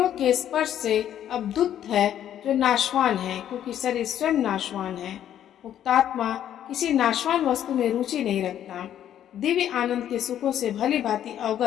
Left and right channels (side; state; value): right; quieter; 10.7 dB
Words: के स्पर्श से अवधुत है जो नाशवान है, क्योंकि शरीर स्वयं नाशवान है। मुक्तात्मा किसी नाशवान वस्तु में रुचि नहीं रखता। दिव्य आनंद के सुखों से भली भांति